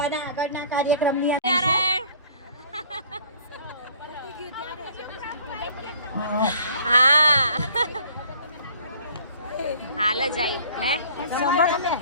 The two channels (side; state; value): both; inverted; correlation -0.52